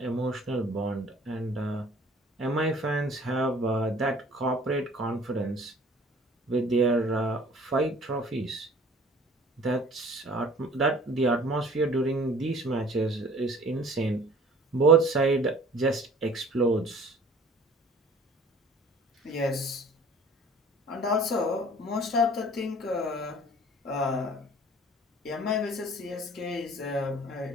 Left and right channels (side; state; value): both; normal; correlation 0.50